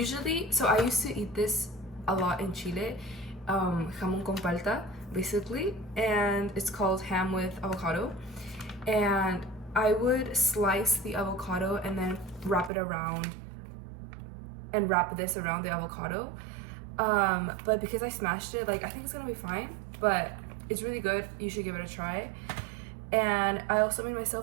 so I used to eat this a lot in Chile. jamon con palta, basically, and it's called ham with avocado. And I would slice the avocado and then wrap this around the avocado. But because I smashed it, like, I think it's gonna be fine, but it's really good. You should give it a try. And I also made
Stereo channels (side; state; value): left; drops out; at 12.7 s